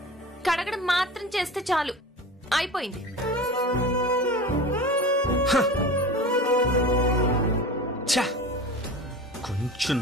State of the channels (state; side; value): normal; both; correlation 0.33